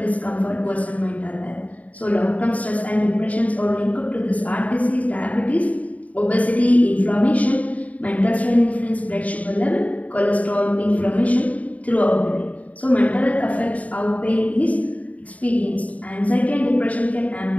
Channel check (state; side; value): late; right; 0.070 ms